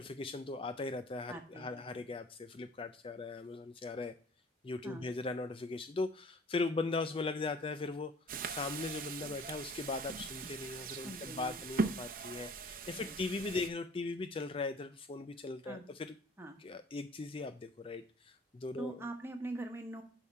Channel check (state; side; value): normal; both; correlation 0.51